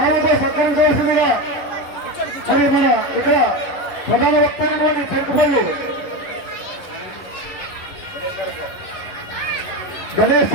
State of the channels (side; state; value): right; late; 11 ms